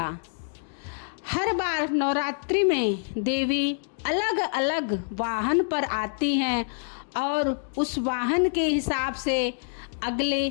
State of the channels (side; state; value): right; silent; digital silence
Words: हर बार नवरात्रि में देवी अलग अलग वाहन पर आती हैं और उस वाहन के हिसाब से